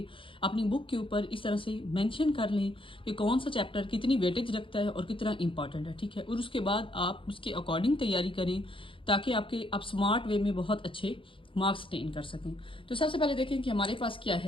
अपनी बुक के ऊपर इस तरह से मेंशन कर लें कि कौन सा चैप्टर कितनी वेटेज रखता है और कितना इंपॉर्टेंट है। ठीक है, और उसके बाद आप उसके अकॉर्डिंग तैयारी करें ताकि आप स्मार्ट वे में बहुत अच्छे मार्क्स टेन कर सकें। तो सबसे पहले देखें कि हमारे पास क्या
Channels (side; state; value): right; late; 0.25 ms